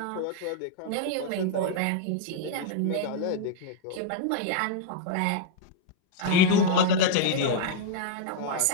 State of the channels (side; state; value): both; different; correlation 0.00